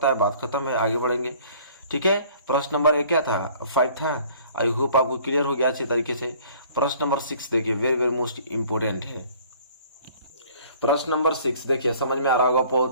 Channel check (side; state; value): both; inverted; correlation -0.54